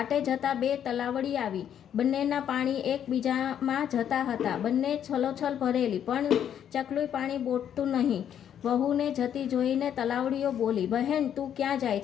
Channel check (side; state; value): right; quieter; 9.4 dB